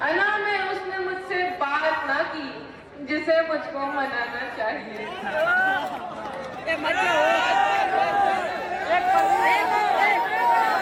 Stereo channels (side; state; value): both; identical; correlation 1.00